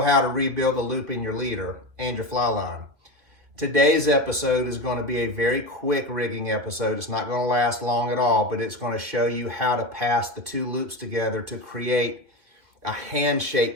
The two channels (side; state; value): left; late; 2.5 ms